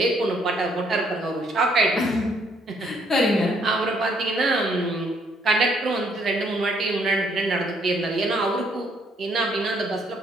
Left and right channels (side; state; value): both; normal; correlation 0.68